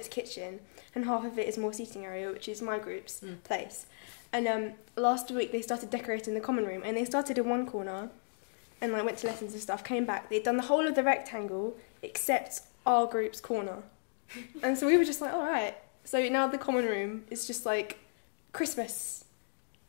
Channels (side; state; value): right; silent; digital silence